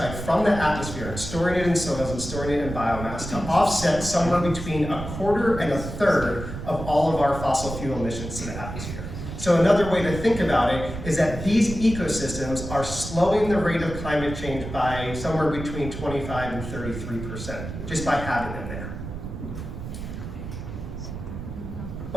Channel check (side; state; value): right; noise; rumble, 8 dB below the sound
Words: from the atmosphere and storing it in soils and storing it in biomass to offset somewhere between 1/4 and 1/3 of all of our fossil fuel emissions to the atmosphere. So another way to think about it is that these ecosystems are slowing the rate of climate change by somewhere between 25 and 33%, just by having them there.